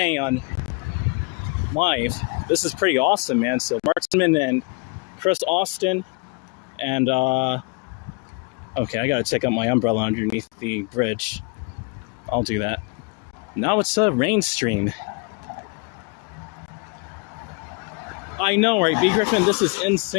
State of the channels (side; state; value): right; quieter; 31.8 dB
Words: on live. This is pretty awesome, man. So Mark Tinman and Chris Austin and, okay, I gotta take out my umbrella underneath the bridge. I'll do that. Now it's a rain stream. I know, right, B. Griffin? This is